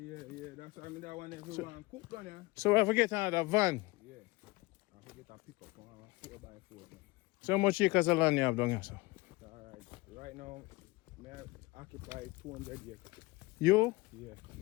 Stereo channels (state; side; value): quieter; right; 22.1 dB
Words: That's why I mean that one everyone cook down here. So I forget another van. Yeah. I forget a pickup on 4x4. Man. So how much acres of land you have down here, sir? Alright. Right now, I occupy 200 acres. You? Yeah,